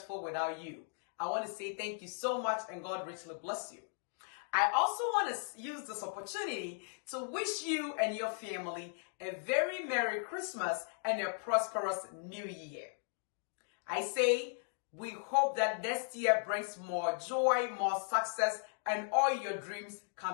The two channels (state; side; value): silent; right; 53 dB below the other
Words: without you. I want to say thank you so much and God richly bless you. I also want to use this opportunity to wish you and your family a very Merry Christmas and a prosperous New Year. I say we hope that next year brings more joy, more success, and all your dreams